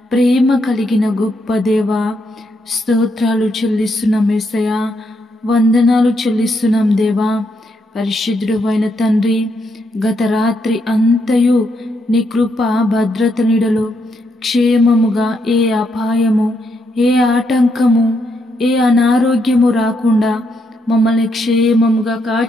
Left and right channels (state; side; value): normal; both; correlation 0.78